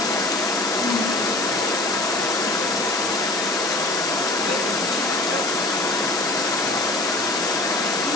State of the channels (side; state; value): left; noise; hiss, 5 dB below the sound